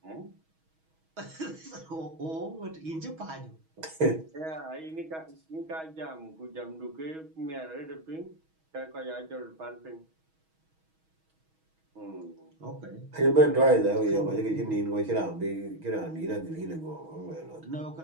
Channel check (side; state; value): left; late; 6.3 ms